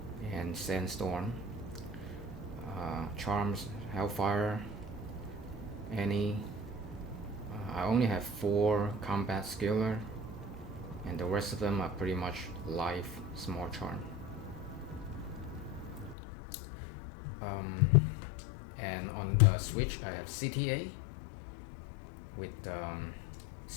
and Sandstorm, Charms, Hellfire, Annie. I only have 4 combat skiller, and the rest of them are pretty much life small charm. And on the switch I have CTA with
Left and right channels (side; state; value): right; drops out; at 16.2 s